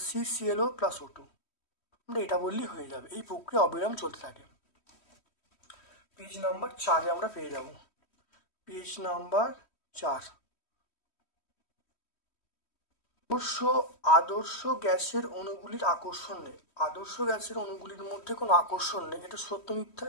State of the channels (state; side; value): late; right; 3.1 ms